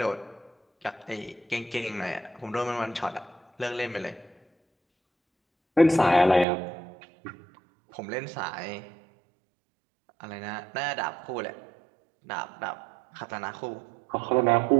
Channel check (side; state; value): left; drops out; at 6.5 s